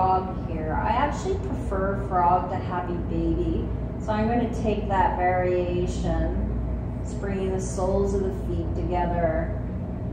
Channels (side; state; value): both; identical; correlation 1.00